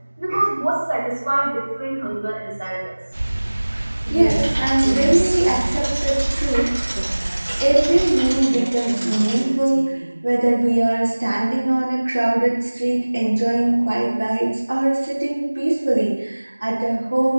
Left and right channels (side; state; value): both; inverted; correlation -1.00